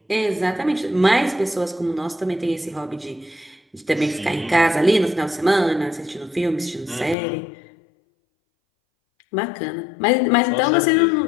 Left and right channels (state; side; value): drops out; right; at 7.2 s